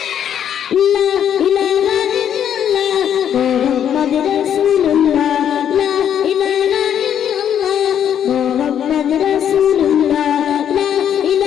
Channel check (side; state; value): right; quieter; 9.3 dB